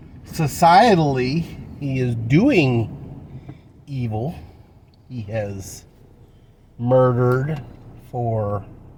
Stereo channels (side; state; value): both; identical; correlation 1.00